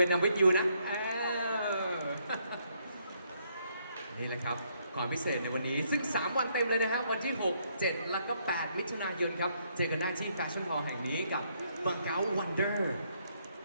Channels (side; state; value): both; inverted; correlation -0.72